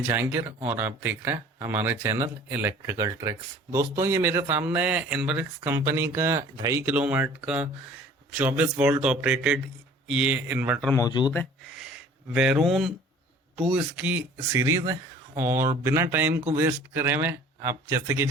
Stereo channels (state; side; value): normal; both; correlation 0.49